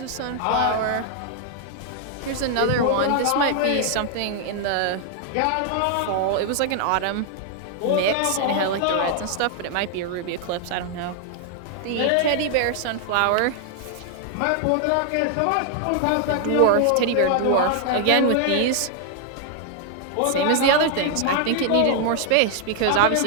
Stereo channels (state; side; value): different; both; correlation 0.00